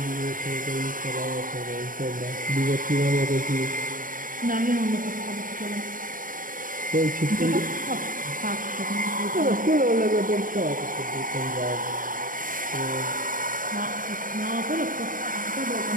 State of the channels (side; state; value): left; late; 0.40 ms